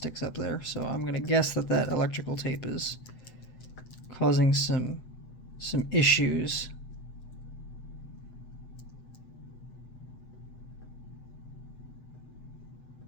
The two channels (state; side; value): late; right; 7.9 ms